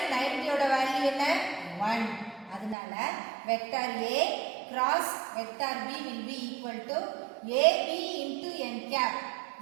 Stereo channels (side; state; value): left; drops out; at 2.8 s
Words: 90 ஓட value என்ன? 1. அதனால vector A cross vector B will be equal to AB into n cap.